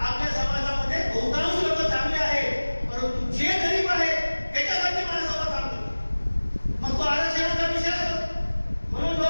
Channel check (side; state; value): both; inverted; correlation -1.00